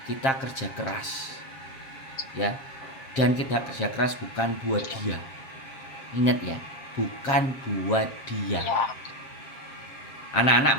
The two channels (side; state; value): right; late; 7.5 ms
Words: kita kerja keras ya. Dan kita kerja keras bukan buat dia. Ingat ya, bukan buat dia. Anak-anak